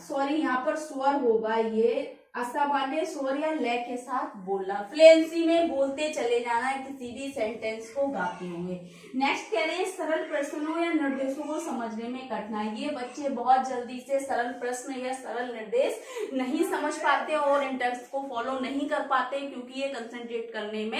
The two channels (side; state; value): both; identical; correlation 1.00